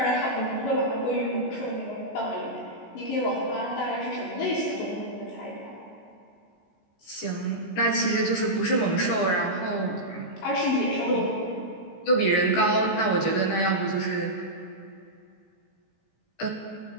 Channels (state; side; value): late; right; 16 ms